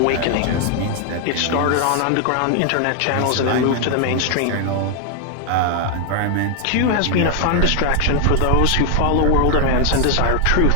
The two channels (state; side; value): different; both; correlation 0.00